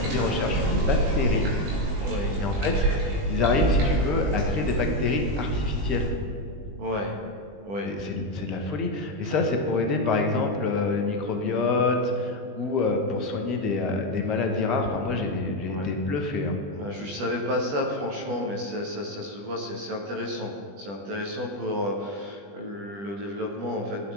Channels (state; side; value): late; left; 20 ms